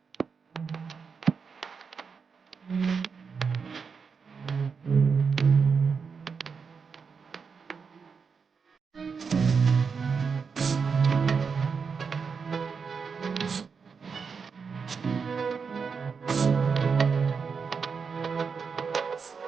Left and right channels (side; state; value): left; quieter; 5.6 dB